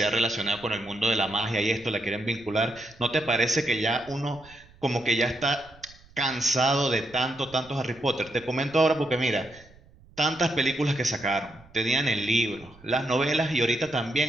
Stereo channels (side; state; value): right; noise; rumble, 25 dB below the sound